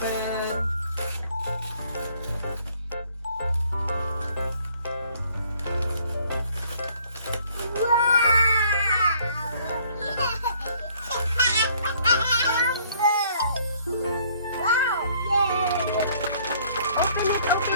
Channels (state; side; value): inverted; both; correlation -0.61